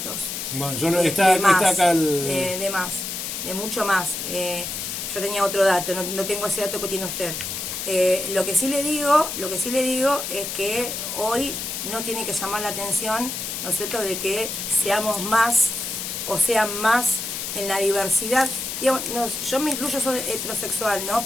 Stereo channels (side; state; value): left; noise; hiss, 5 dB below the sound